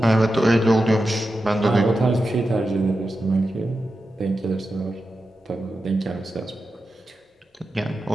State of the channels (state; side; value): normal; both; correlation 0.91